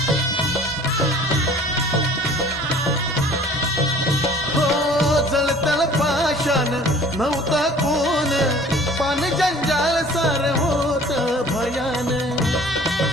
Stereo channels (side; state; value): both; normal; correlation 0.50